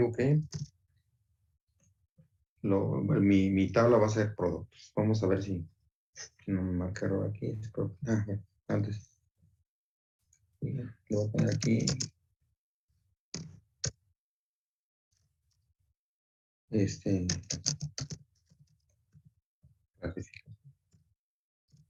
que mi tabla va a ser productos. Vamos a ver si no me marca error aquí. Antes. Le voy a poner aquí clasificación.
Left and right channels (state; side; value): identical; both; correlation 1.00